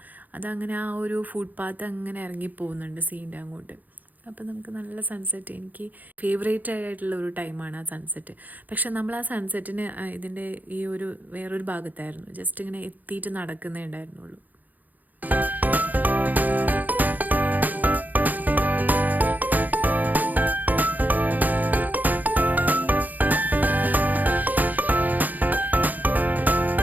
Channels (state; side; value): late; left; 0.082 ms